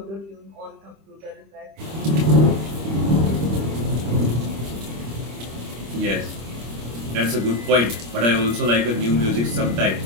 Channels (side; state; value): left; late; 25 ms